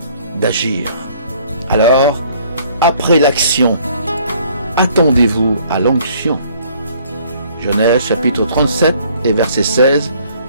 d'agir. Alors, après l'action, attendez-vous à l'onction. Genèse chapitre 37 et verset 16.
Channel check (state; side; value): inverted; both; correlation -0.59